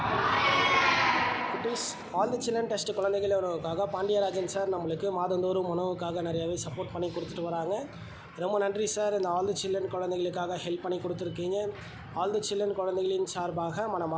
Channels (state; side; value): identical; both; correlation 1.00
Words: All the children test குழந்தைகள் உணவுக்காக பாண்டியராஜன் சார் நம்மளுக்கு மாதந்தோறும் உணவுக்காக நிறையாவே சப்போர்ட் பண்ணி கொடுத்துட்டு வராங்க. ரொம்ப நன்றி சார். இந்த ஆல் தி சில்ட்ரன் குழந்தைகளுக்காக ஹெல்ப் பண்ணி கொடுத்துருக்கீங்க. ஆல் தி சில்ட்ரன் குழந்தைகளின் சார்பாக